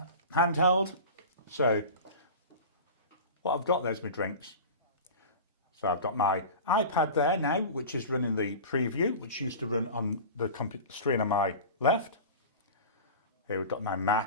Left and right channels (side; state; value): both; inverted; correlation -0.33